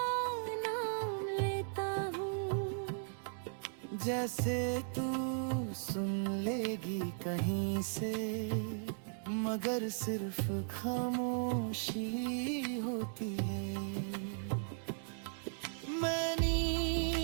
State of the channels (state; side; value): silent; left; digital silence